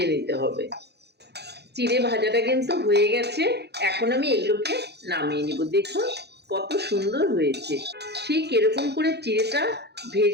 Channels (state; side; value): late; left; 0.48 ms